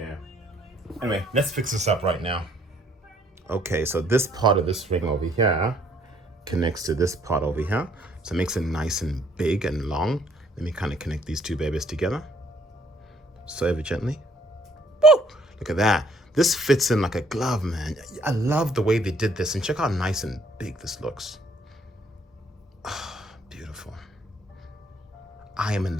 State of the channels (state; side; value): normal; both; correlation 0.64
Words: Anyway, let's fix this up right now. Okay, so this part of this ring over here connects to this part over here. So it makes it nice and big and long. Let me kind of connect these two babies together. So ever gently. Woo! Look at that. This fits in like a glove, man. I love the way they did this, and check how nice and big this looks. Oh, beautiful. I am